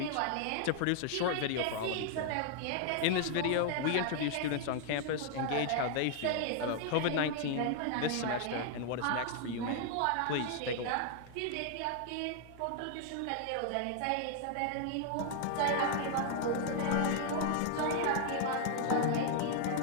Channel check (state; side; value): different; both; correlation 0.00